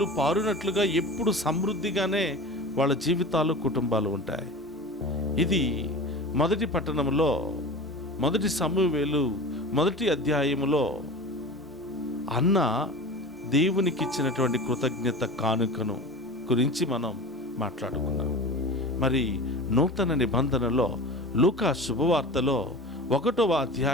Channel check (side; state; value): both; normal; correlation 0.34